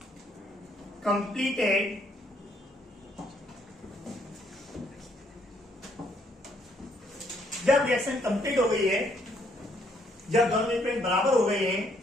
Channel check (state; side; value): normal; both; correlation 0.69